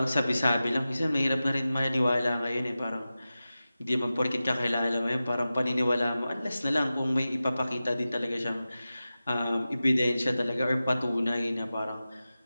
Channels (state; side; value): inverted; both; correlation -0.94